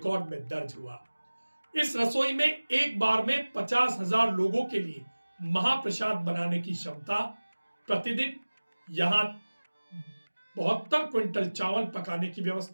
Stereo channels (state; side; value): inverted; both; correlation -1.00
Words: में दर्ज हुआ। इस रसोई में एक बार में 50,000 लोगों के लिए महाप्रसाद बनाने की क्षमता। प्रतिदिन यहां 72 क्विंटल चावल पकाने की